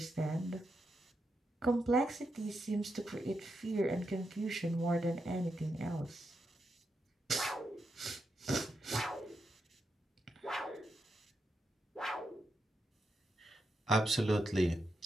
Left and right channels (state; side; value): normal; both; correlation 0.84